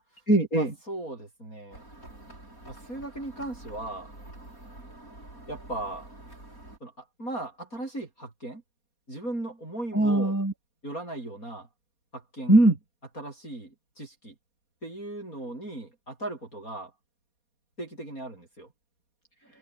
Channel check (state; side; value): late; right; 4.2 ms